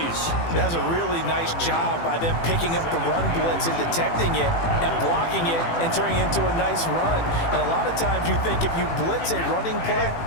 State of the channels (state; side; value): late; right; 18 ms